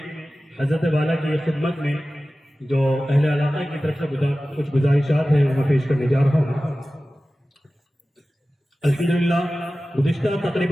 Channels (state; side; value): normal; both; correlation 0.96